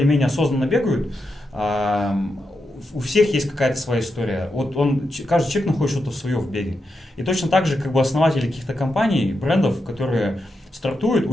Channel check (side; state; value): both; normal; correlation 0.86